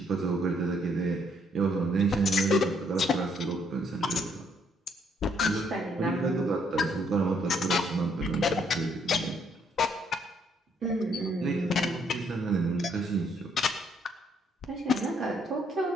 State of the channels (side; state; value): both; normal; correlation 0.69